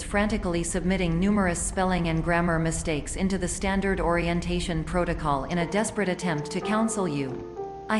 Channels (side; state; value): both; identical; correlation 1.00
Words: frantically submitting numerous spelling and grammar mistakes into the standard orientation protocol in a desperate attempt to counsel you. I